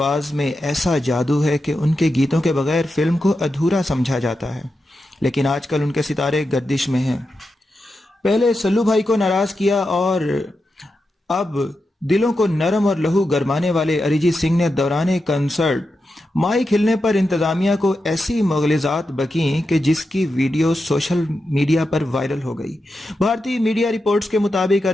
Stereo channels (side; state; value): both; normal; correlation 0.88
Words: में ऐसा जादू है कि उनके गीतों के बगैर फिल्म को अधूरा समझा जाता है। लेकिन आजकल उनके सितारे गर्दिश में हैं। पहले सल्लू भाई को नाराज किया और अब दिलों को नरम और लहू गरमाने वाले अरिजीत सिंह ने दौरान कंसर्ट माइक हिलने पर इंतजामिया को ऐसी मुग़लिज़ात बकीं कि जिसकी वीडियो सोशल मीडिया पर वायरल हो गई। भारतीय मीडिया रिपोर्ट्स के मुताबिक